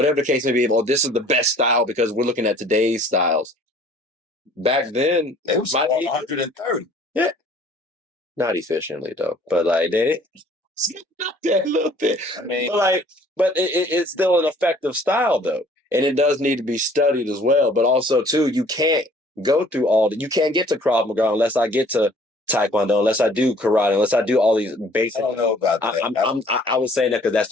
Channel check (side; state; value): both; normal; correlation 0.55